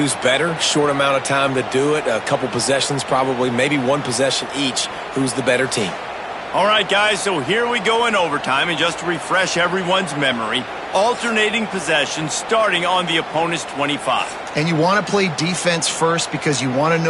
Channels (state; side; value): identical; both; correlation 1.00